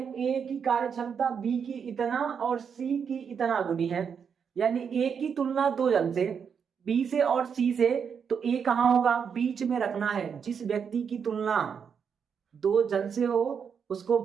ए की कार्य क्षमता बी की इतना और सी की इतना गुनी है, यानी ए की तुलना 2 जन से, बी से और सी से, तो ए कहां होगा, बीच में रखना है। जिस व्यक्ति की तुलना 2 जन से हो उसको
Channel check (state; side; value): quieter; left; 6.9 dB